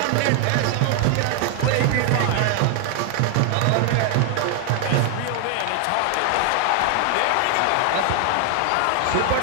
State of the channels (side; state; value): both; different; correlation 0.00